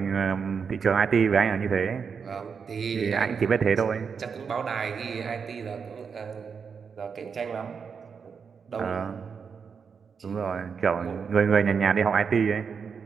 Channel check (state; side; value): quieter; left; 6.1 dB